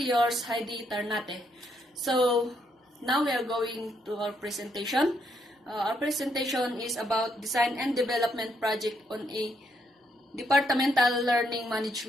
yours, Heidi Tarnate. So, now we are going to our presentation. Our presentation is about design and development project on a departmental learning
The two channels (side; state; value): both; normal; correlation 0.75